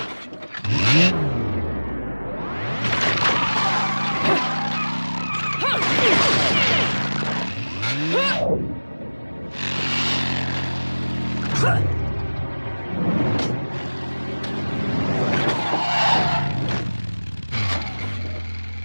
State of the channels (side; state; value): both; inverted; correlation -1.00